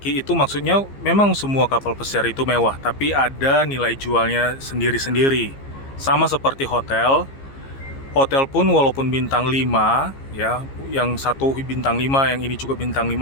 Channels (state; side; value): late; right; 15 ms